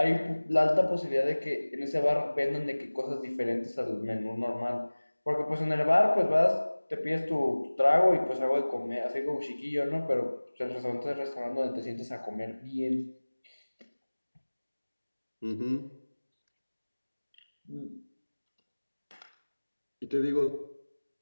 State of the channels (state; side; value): inverted; both; correlation -1.00